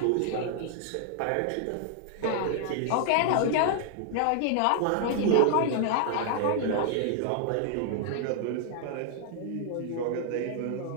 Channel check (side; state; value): both; different; correlation 0.00